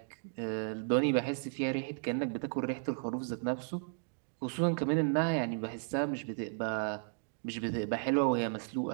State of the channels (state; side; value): silent; left; digital silence